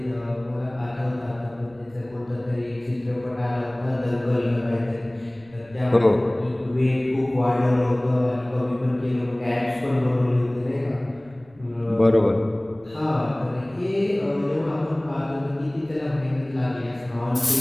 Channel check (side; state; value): right; noise; rumble, 27 dB below the sound